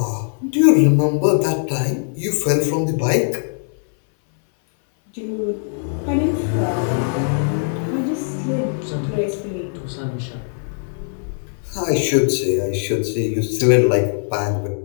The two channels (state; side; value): silent; right; 60 dB below the other